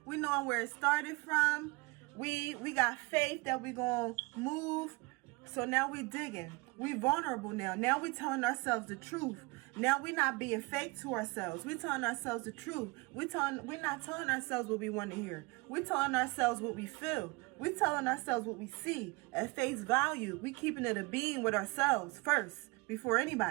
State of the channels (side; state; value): left; quieter; 26.4 dB